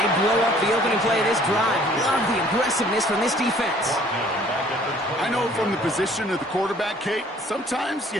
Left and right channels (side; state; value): both; normal; correlation 0.56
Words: blow up the opening play of this drive. Love the aggressiveness from this defense. I know from the position of the quarterback, Kate, sometimes